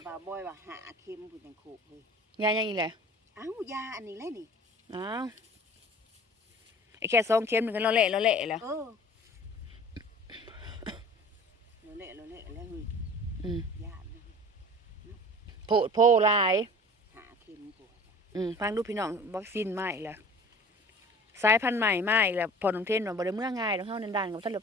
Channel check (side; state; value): both; normal; correlation 0.44